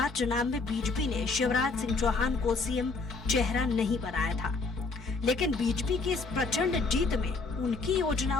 चुनाव में बीजेपी ने शिवराज सिंह चौहान को सीएम चेहरा नहीं बनाया था, लेकिन बीजेपी की इस प्रचंड जीत में उनकी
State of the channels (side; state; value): right; quieter; 3.9 dB